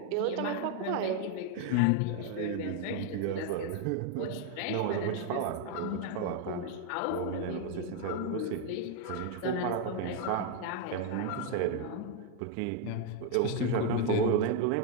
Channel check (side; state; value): both; different; correlation 0.01